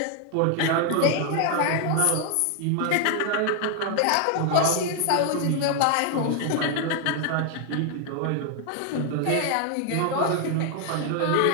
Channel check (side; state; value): both; different; correlation 0.00